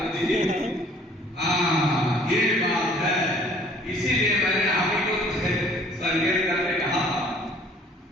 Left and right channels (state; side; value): normal; both; correlation 0.56